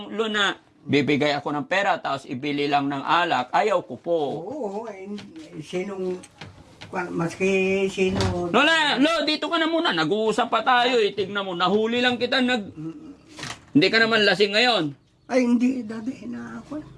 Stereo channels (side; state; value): both; identical; correlation 1.00